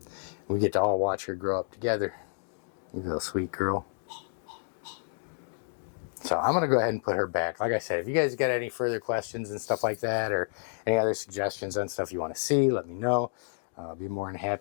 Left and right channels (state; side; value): silent; right; digital silence